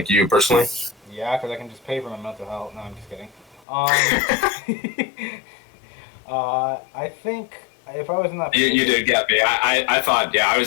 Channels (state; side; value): drops out; right; at 3.7 s